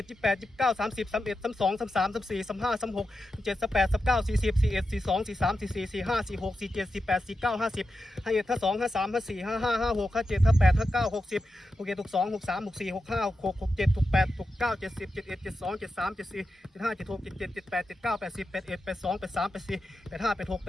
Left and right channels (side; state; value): both; normal; correlation 0.89